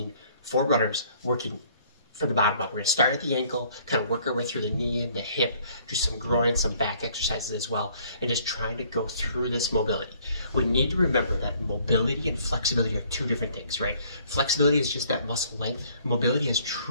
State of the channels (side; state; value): both; inverted; correlation -0.60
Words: for runners working from the bottom up. We're gonna start at the ankle, kind of work our way through the knee and the hip, do some groin, some back exercises as well, and just trying to go through this mobility. We need to remember that mobility and flexibility are two different things, right? Flexibility is just that muscle length. Mobility is